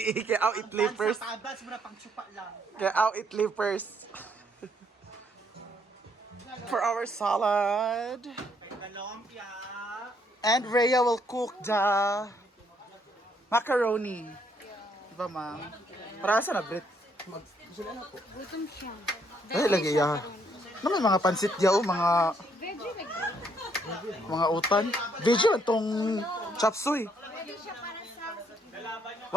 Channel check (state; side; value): normal; both; correlation 0.70